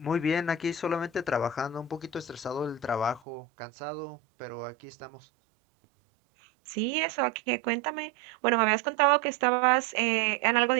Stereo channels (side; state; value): left; drops out; at 3.2 s